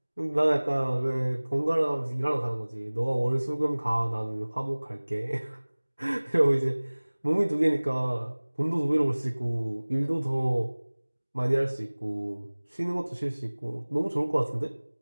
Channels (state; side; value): inverted; both; correlation -1.00